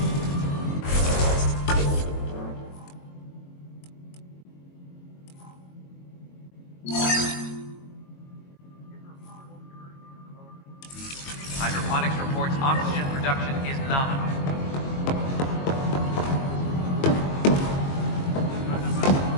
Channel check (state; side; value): late; right; 22 ms